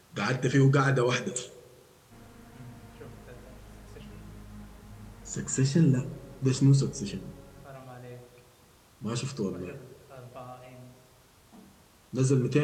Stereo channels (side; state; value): both; identical; correlation 1.00